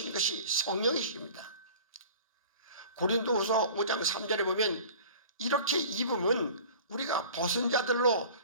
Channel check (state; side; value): inverted; both; correlation -0.42